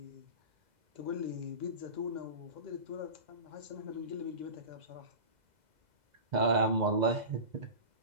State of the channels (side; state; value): left; late; 2.0 ms